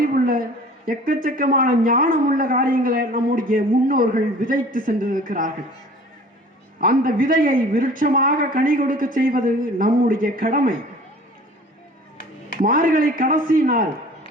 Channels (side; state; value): both; normal; correlation 0.46